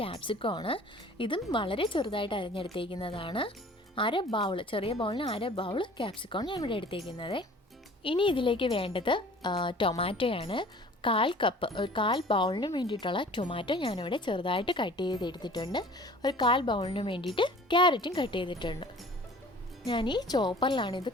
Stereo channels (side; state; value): both; normal; correlation 0.48